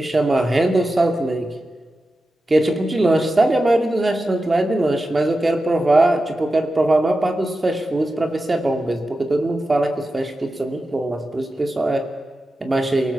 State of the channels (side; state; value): both; normal; correlation 0.92